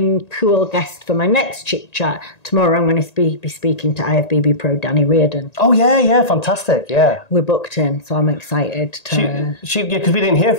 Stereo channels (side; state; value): right; late; 1.8 ms